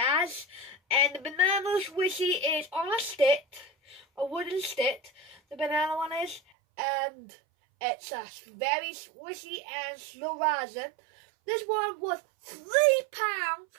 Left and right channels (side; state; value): left; drops out; at 6.4 s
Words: and the banana swooshy is on a stick, a wooden stick. The banana one is, and it's a very swishy and slow rising. This one was £3.